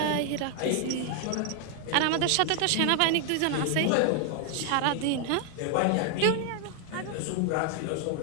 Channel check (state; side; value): different; both; correlation 0.00